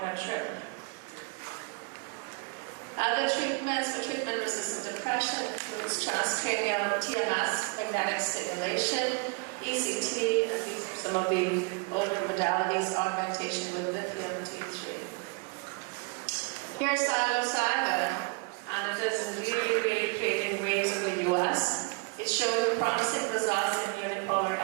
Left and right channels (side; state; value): left; quieter; 32.0 dB